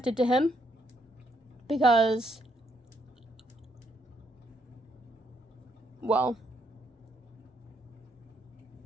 to him because, well,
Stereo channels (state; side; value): normal; both; correlation 0.74